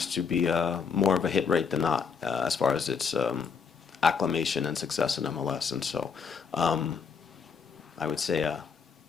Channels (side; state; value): right; quieter; 6.0 dB